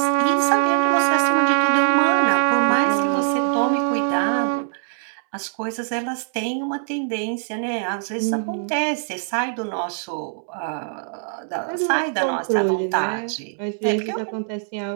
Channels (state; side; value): silent; left; 64 dB below the other